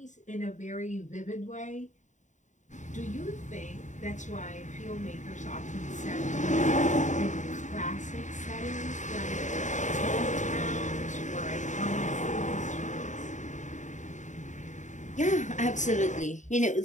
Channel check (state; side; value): late; right; 0.35 ms